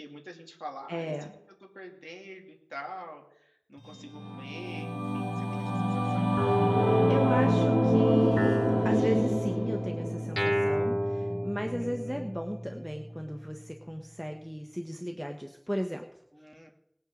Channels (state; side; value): identical; both; correlation 1.00